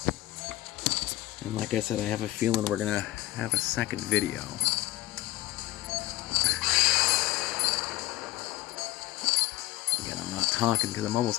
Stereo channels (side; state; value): right; quieter; 17.3 dB